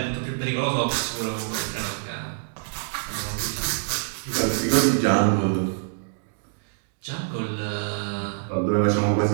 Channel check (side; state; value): left; silent; digital silence